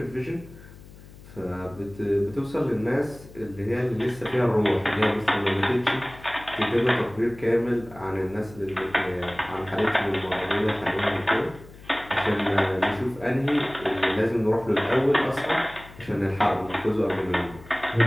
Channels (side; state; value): left; noise; hum, 19 dB below the sound